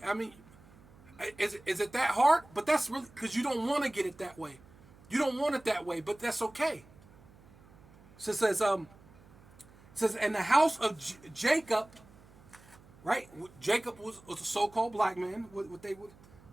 is it that hard? But that's really because you don't want to get it that way. You don't want it that way, but that's okay. So it says, and the house of Jacob, right? Jacob was a so-called black man.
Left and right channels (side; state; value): right; noise; hum, 24 dB below the sound